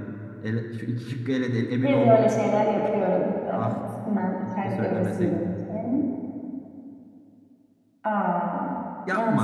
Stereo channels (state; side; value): identical; both; correlation 1.00